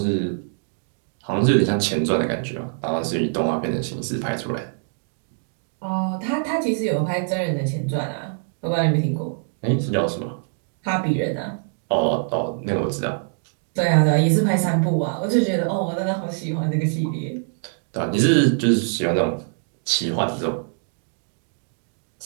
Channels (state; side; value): silent; left; 63 dB below the other